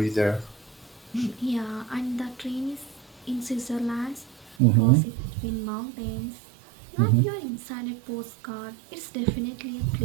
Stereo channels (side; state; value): left; drops out; at 4.5 s